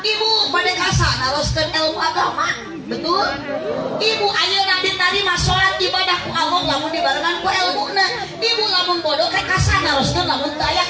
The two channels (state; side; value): identical; both; correlation 1.00